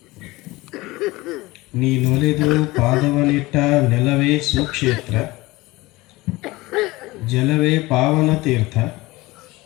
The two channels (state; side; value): quieter; right; 20.7 dB